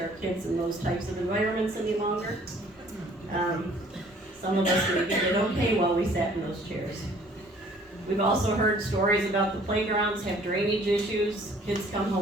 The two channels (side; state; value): both; normal; correlation 0.56